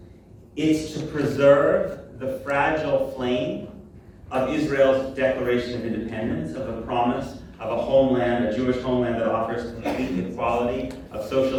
It's to preserve the fragile flame of Israel's Declaration of Independence, of the promise of a homeland, a Jewish homeland that offers complete equality of of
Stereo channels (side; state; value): both; identical; correlation 1.00